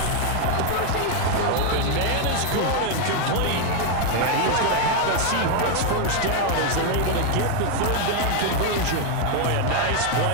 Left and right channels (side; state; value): both; different; correlation 0.01